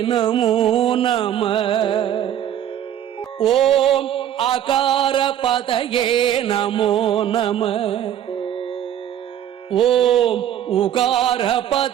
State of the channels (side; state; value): left; quieter; 10.7 dB